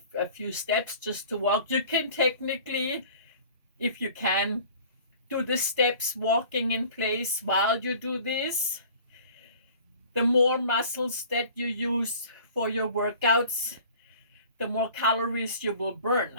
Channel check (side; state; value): both; inverted; correlation -0.47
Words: few steps just to walk. You can technically, if you can, do the steps walking in place while you do this. The more muscles that you use for your workouts, the more calories you will